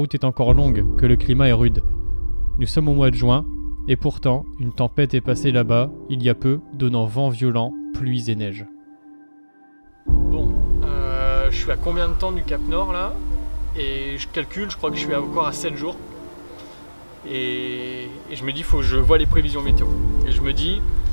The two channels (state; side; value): inverted; both; correlation -1.00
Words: est encore longue, que le climat est rude. Nous sommes au mois de juin, et pourtant, une tempête est passée là-bas, il y a peu, donnant vent violent, pluies et neige. Bon, je suis à combien de temps du Cap Nord là ? Et je calcule, je crois que je suis encore à 7 jours. Et je me dis, faut que je vois les prévisions météo. Et je me dis,